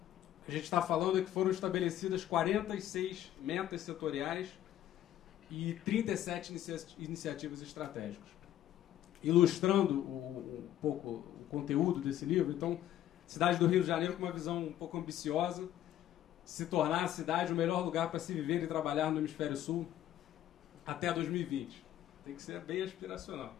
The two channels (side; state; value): right; quieter; 12.3 dB